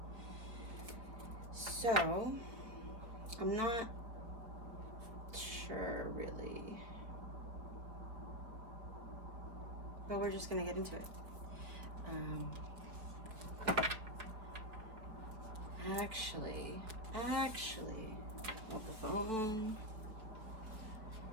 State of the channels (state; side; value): late; left; 4.5 ms